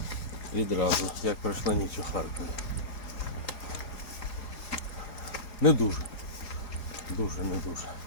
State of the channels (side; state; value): right; late; 4.9 ms